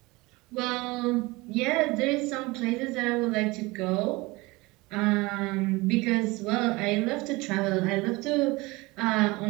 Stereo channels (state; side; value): quieter; left; 22.9 dB